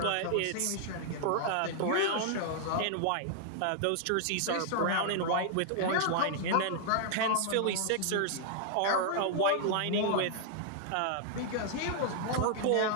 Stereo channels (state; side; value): different; both; correlation -0.01